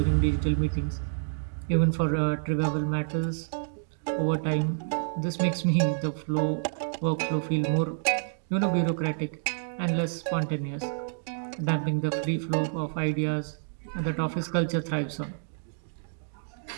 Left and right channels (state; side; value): silent; left; digital silence